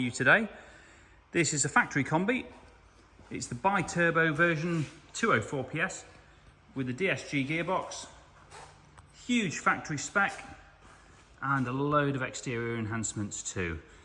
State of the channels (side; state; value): both; identical; correlation 1.00